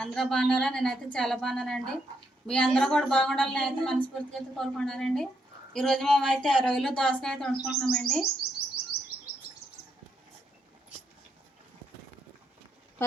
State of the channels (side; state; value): both; normal; correlation 0.78